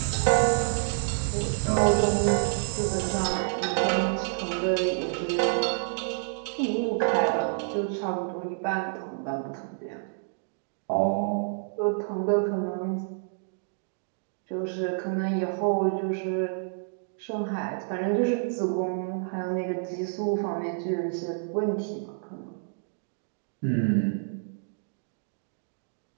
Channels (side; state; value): left; silent; digital silence